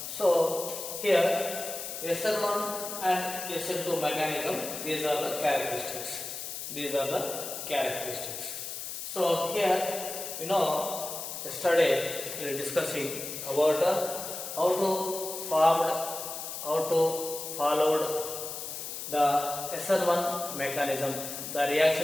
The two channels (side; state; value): left; noise; hiss, 7 dB below the sound